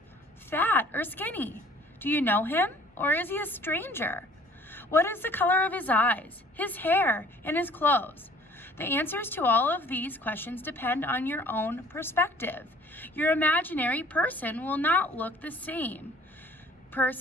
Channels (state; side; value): normal; both; correlation 0.54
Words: fat or skinny? Do you know him? Or is he a stranger? What is the color of his eyes, his hair, and his clothes? The answers to all of these questions depend on your own perspective. Your imaginary person will not look the same